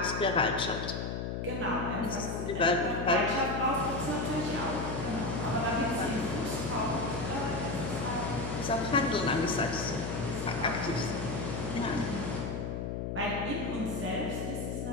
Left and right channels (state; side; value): noise; left; hum, 3 dB below the sound